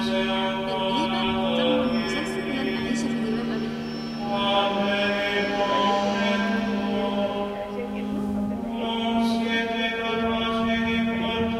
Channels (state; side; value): identical; both; correlation 1.00